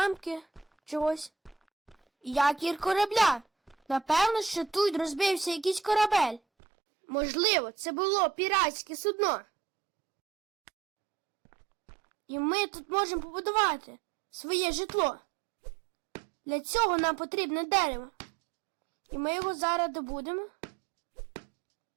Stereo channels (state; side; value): drops out; left; at 6.4 s